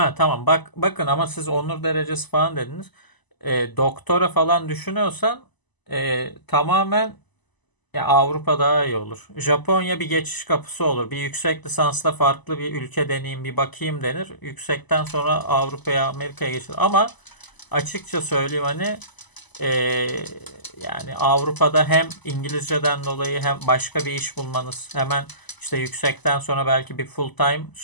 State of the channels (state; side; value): late; right; 1.0 ms